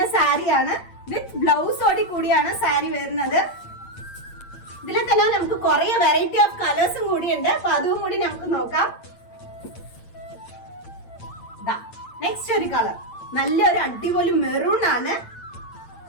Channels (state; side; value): late; right; 8.8 ms